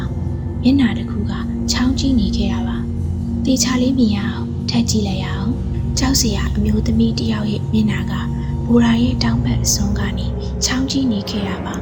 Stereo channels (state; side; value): identical; both; correlation 1.00